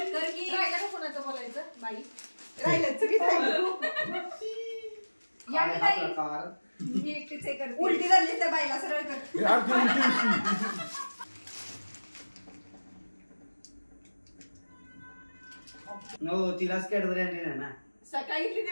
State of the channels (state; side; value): inverted; both; correlation -1.00